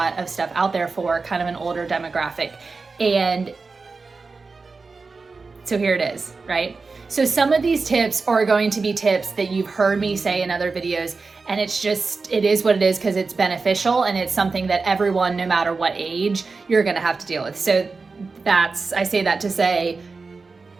of stuff out there for kind of an older demographic. And so here it is, right? So some of these tips are going to be tips that you've heard me say in other videos, and it is what it is because it's beneficial and it's something that everyone, no matter what age, you're gonna have to deal with. So I say that to say,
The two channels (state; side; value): quieter; left; 4.2 dB